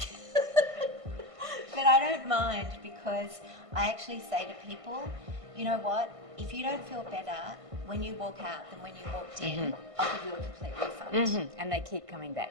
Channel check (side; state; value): left; late; 1.5 ms